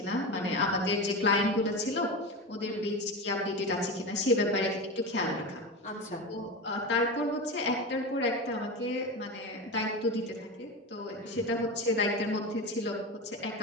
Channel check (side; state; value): both; normal; correlation 0.23